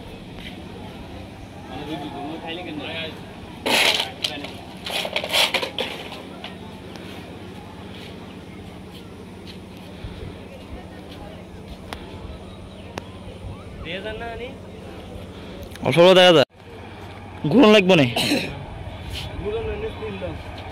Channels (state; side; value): identical; both; correlation 1.00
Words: অল্প দেখা যায় ঘুরন লাগবে না